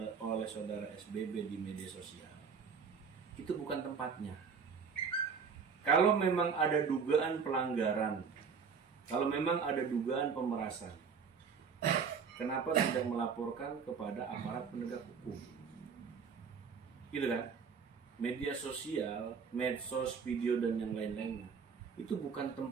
oleh saudara SBB di media sosial, itu bukan tempatnya. Kalau memang ada dugaan pelanggaran, kalau memang ada dugaan pemerasan, kenapa tidak melaporkan kepada aparat penegak hukum? Gitu kan? Media sosial, medsos, video dan yang lain-lainnya, itu bukan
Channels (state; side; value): quieter; left; 6.0 dB